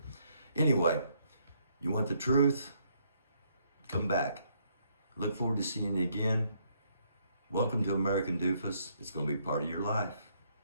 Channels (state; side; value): inverted; both; correlation -0.71